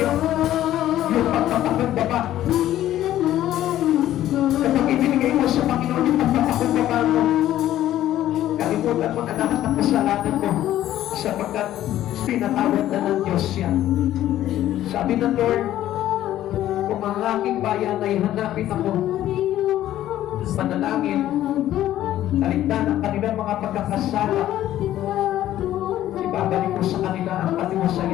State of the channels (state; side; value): quieter; right; 13.1 dB